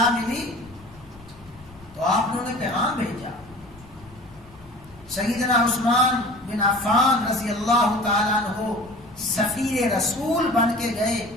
ملی تو آپ نے پیغام بھیجا. سیدنا عثمان بن عفان رضی اللہ تعالیٰ عنہ سفیر رسول بن کے گئے.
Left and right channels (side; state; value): left; noise; rumble, 23 dB below the sound